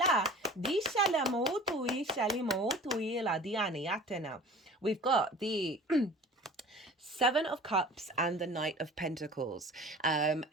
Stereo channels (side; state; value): both; normal; correlation 0.42